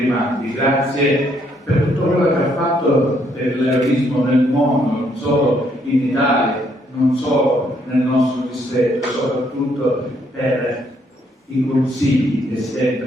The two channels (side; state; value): both; normal; correlation 0.71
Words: grazie per tutto quello che ha fatto per l'eroismo nel mondo, non solo in Italia, non solo nel nostro distretto, soprattutto per i consigli che